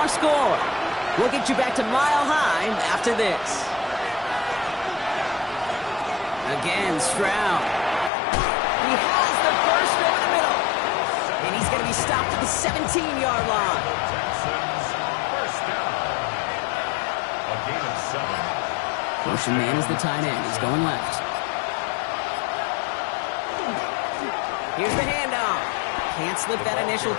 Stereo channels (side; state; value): right; drops out; at 8.1 s